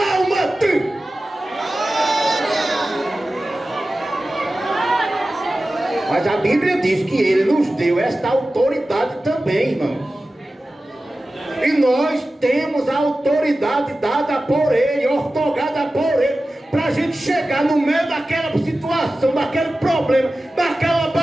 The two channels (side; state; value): both; normal; correlation 0.95